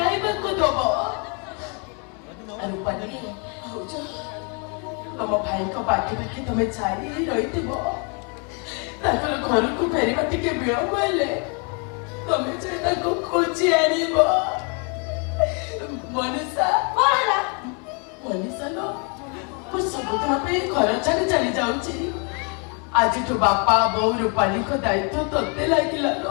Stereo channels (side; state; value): right; quieter; 36.3 dB